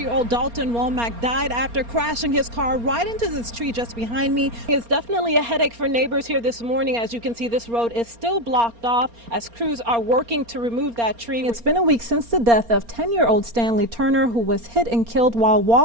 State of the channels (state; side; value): late; left; 4.3 ms